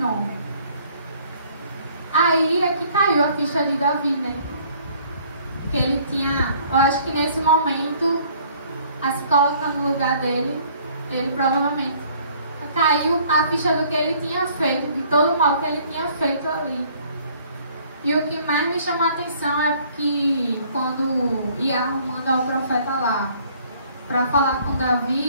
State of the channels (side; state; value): both; inverted; correlation -0.59